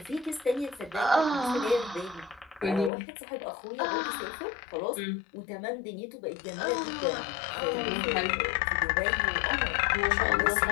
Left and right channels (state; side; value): drops out; right; at 2.9 s